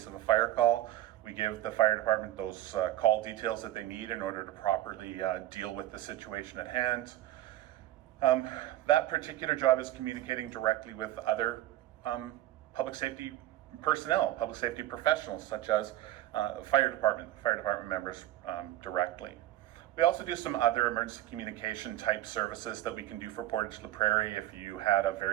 of a fire call. We give the fire department those call details that they need in order to properly deal with the situation at hand. That particular job is communicating directly with other public safety personnel, public safety professionals, such as fire department members directly. We also do some other emergency communication type services that we can do for Portage la Prairie. If you had a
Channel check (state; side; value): quieter; left; 14.3 dB